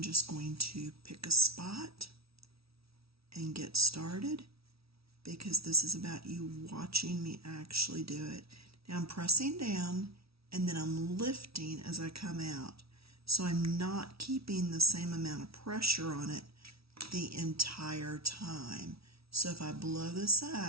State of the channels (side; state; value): left; late; 0.76 ms